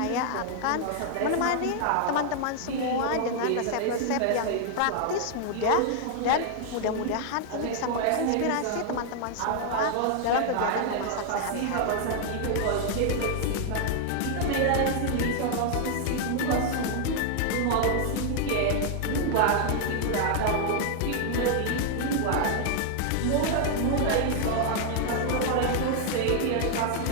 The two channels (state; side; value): different; both; correlation 0.00